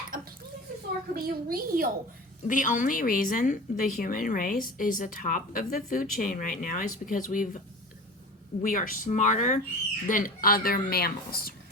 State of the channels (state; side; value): normal; both; correlation 0.34